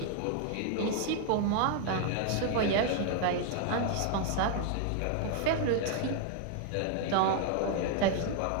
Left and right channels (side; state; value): both; different; correlation 0.00